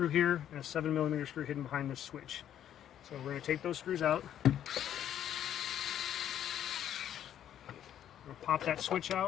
here and a 7mm screw hidden behind this switch. So we're going to take those screws out. We'll pop that switch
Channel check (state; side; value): quieter; right; 10.5 dB